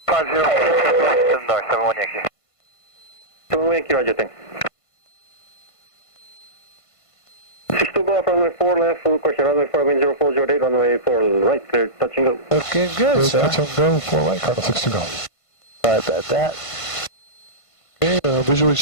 50, north, 71 Yankee. 71 Yankee, roger, thanks. 62 Golf, runway 4 left, full question, runway 4, wind 0408, runway 4 right, clear, touch and go. Okay, good, sir. Touch and go, 4 right, Cardinal 62 Golf. Sorry about that. Okay, visually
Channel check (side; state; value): right; late; 1.5 ms